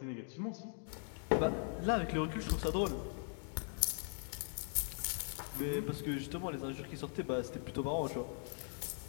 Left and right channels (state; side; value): silent; right; 51 dB below the other